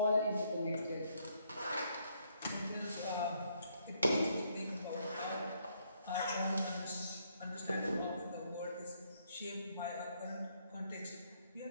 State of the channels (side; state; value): both; inverted; correlation -0.72